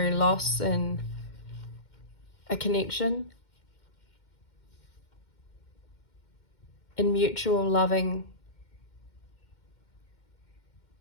loss in a connection, in mutual loving,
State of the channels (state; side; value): late; right; 2.1 ms